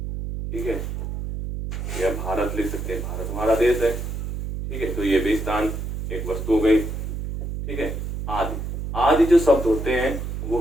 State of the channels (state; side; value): noise; right; hum, 5 dB below the sound